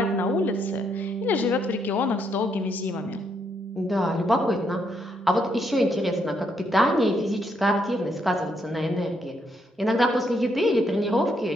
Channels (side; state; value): both; normal; correlation 0.75